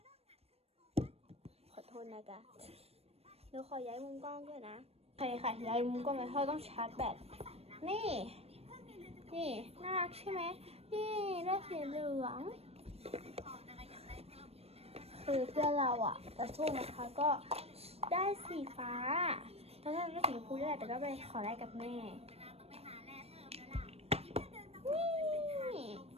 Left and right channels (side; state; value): left; late; 0.29 ms